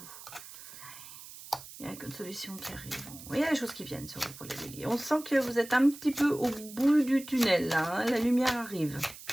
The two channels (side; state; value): right; noise; hiss, 15 dB below the sound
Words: Il y a une solution qui arrive. Il y a des choses qui viennent sur vous pour les béliers. On sent que vous êtes un petit peu au bout du tunnel, là. Hein, la lumière arrive.